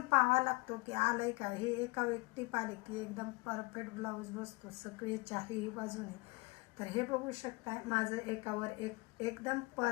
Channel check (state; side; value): quieter; right; 25.7 dB